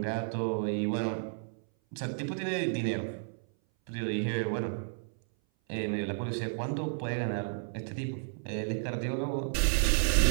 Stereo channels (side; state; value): left; silent; 56 dB below the other